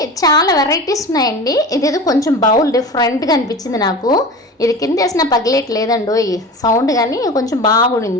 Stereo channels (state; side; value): normal; both; correlation 0.33